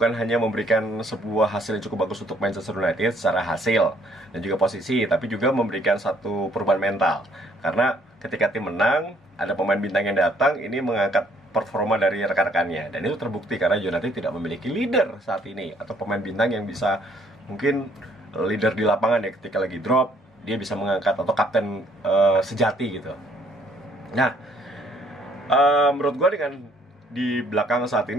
hanya memberikan sebuah hasil yang cukup bagus untuk Manchester United secara hasil dan juga posisi, tapi juga memberikan satu perubahan mental. Karena ketika tim menang, ada pemain bintang yang datang, ini mengangkat performa dari rekan-rekannya. Dan itu terbukti karena United tidak memiliki leader saat ini, atau pemain bintang yang bisa mungkin leader di lapangan ya, ketika lagi drop, dia bisa mengangkat, atau kapten sejati gitu. Nah, menurut gue dengan di belakang saat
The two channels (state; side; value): normal; both; correlation 0.64